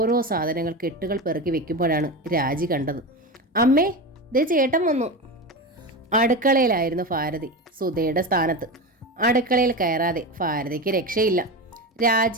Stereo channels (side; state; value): both; normal; correlation 0.22